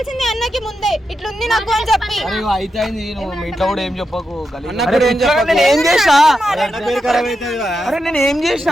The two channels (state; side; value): normal; both; correlation 0.87